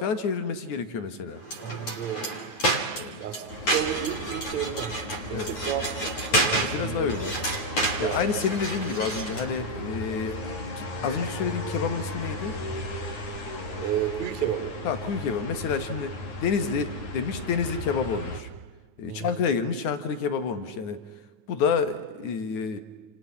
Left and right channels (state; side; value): late; right; 9.4 ms